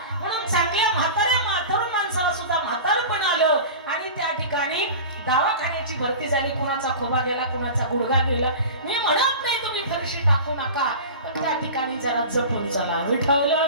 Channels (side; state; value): both; inverted; correlation -0.34